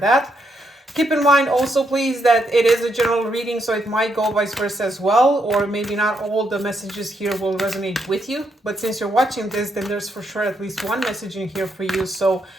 Keep in mind also, please, that it is a general reading, so it might go vice versa as well, or maybe not all the messages here will resonate with you. But since you're watching this, then there's for sure at least one message in here for you. So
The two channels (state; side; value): normal; both; correlation 0.78